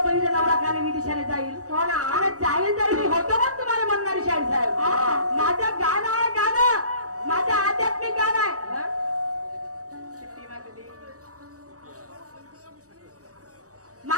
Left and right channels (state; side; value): late; left; 0.66 ms